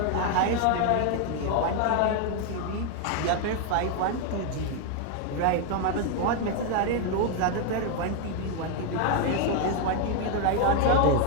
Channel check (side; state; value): both; different; correlation 0.00